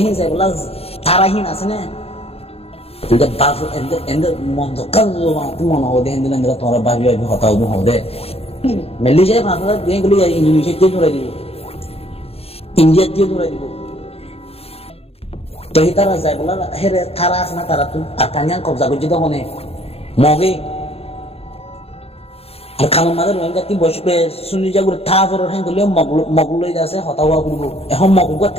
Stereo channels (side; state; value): right; late; 0.29 ms